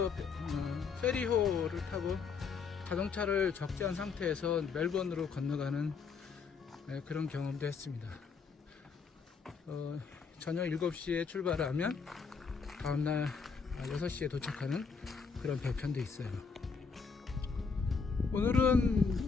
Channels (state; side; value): quieter; right; 5.4 dB